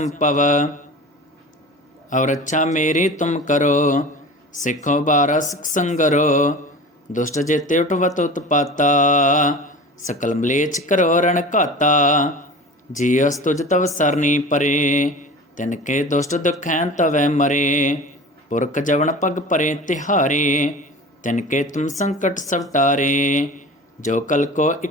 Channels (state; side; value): normal; both; correlation 0.36